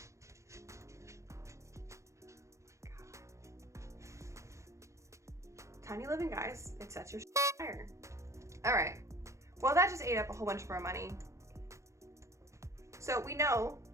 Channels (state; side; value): late; left; 0.14 ms